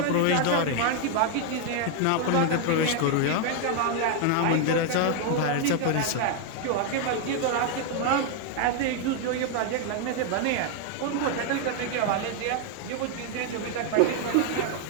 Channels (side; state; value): both; different; correlation 0.00